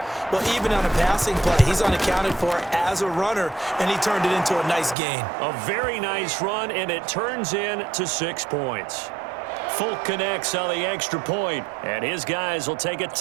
Well, even on a passing play, he's unaccounted for as a runner, and he turned it into a nice gain. A very nice run, and it turns into 6 points. Folk connects on the extra point, and his guys will take a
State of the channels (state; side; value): drops out; left; at 5.0 s